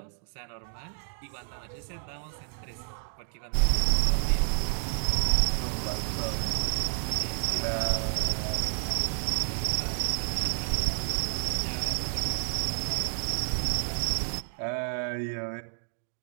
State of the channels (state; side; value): silent; left; digital silence